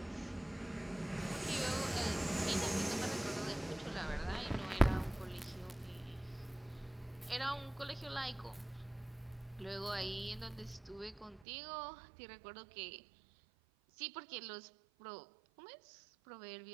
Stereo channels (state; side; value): drops out; left; at 11.5 s